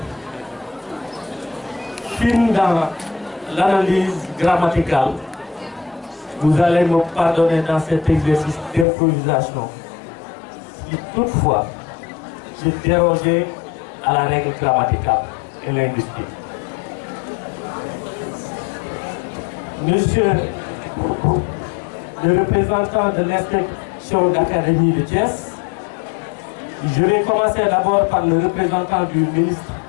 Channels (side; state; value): right; drops out; at 8.8 s